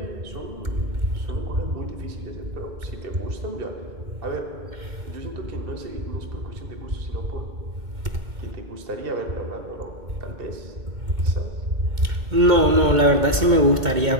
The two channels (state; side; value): late; left; 2.2 ms